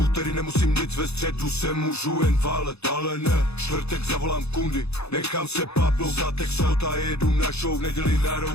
nemusím nic, ve středu se můžu jen válet, ale ne, čtvrtek zavolám kundy, nechám se papnout za Texot a jedu na show, v neděli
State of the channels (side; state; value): right; late; 0.79 ms